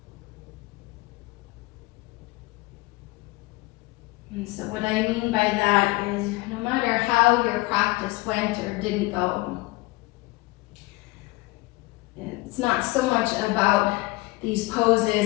And so what I mean by that is no matter how your practice went or didn't go, it's not so much about these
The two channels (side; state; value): right; quieter; 22.2 dB